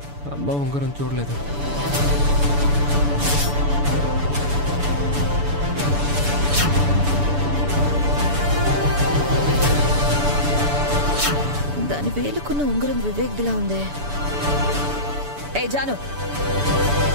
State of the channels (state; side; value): late; left; 6.9 ms